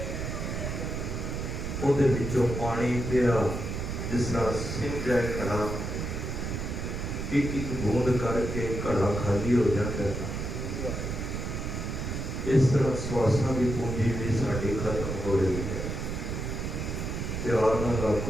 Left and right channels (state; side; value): noise; right; rumble, 4 dB below the sound